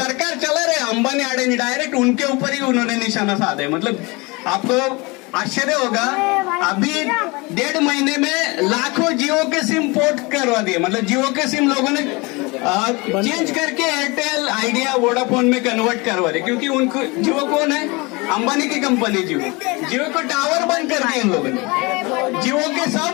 चला रहे अंबानी अडानी डायरेक्ट उनके ऊपर ही उन्होंने निशाना साधा है। मतलब आपको आश्चर्य होगा, अभी 1.5 महीने में लाखों जियो के सिम पोर्ट करवा दिए। मतलब जियो के सिम लोगों ने चेंज करके एयरटेल, आइडिया, वोडाफोन में कन्वर्ट करवा दिए, क्योंकि उनको जियो कौन है? अंबानी की कंपनी जियो को टावर बंद कर दिए इन लोगों ने। जियो के सब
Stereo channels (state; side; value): quieter; right; 26.1 dB